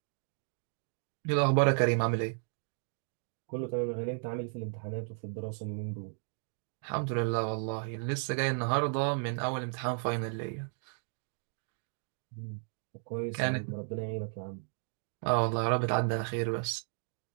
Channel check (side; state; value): left; silent; 55 dB below the other